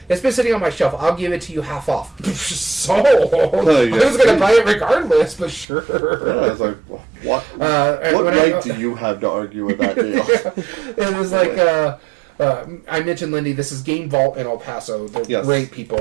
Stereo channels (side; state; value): left; drops out; at 5.7 s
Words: it's been sitting on my shelf. I'll give it to you half off. Sold. I was going to buy it regardless, but sure. Yeah, I was like, what right do you have to argue with that deal? It was like... I mentioned Lindy. This is Game Vault in El Paso. They're great